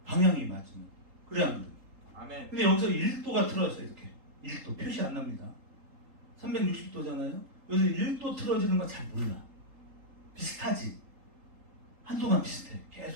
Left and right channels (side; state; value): left; late; 3.8 ms